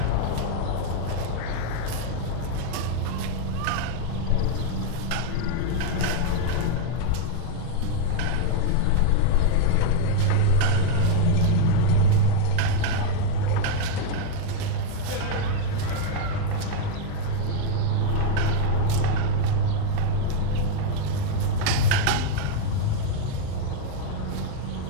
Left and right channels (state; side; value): different; both; correlation -0.01